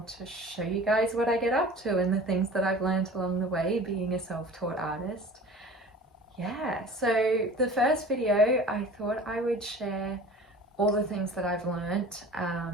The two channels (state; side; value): normal; both; correlation 0.42